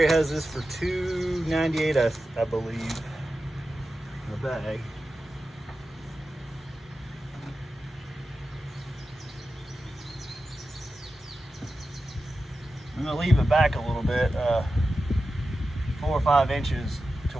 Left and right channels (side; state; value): both; normal; correlation 0.92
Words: has this for $2.98, I believe, in a bag. I'm gonna leave it back a little bit, 4 or 5 inches, to